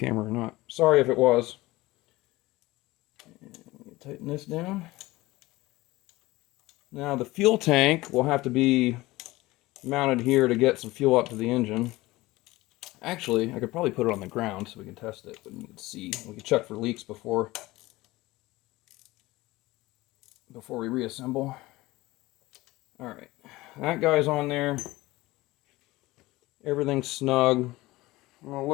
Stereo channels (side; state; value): right; quieter; 19.4 dB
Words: or not. Sorry if it was. And tighten this down. Now the fuel tank will have to be mounted here to get some fuel up to the engine. Actually, I could probably put it on the ground so we can test it, but we can see. We can check for leaks before we reassemble. All right, that guy's on there. Everything's snug. I'm gonna